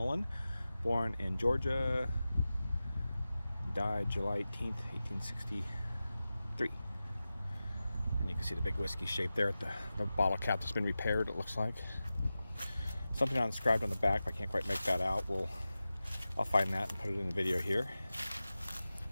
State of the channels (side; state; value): both; inverted; correlation -0.95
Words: born in Georgia, died July 18th, 1863. And you can see the big whiskey shape there at the bottle cap that's been repaired, it looks like. Something inscribed on the back, but I can't quite make that out. I'll find that and put it in the video here.